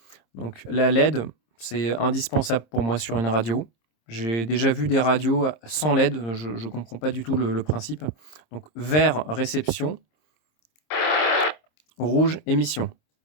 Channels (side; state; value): right; late; 26 ms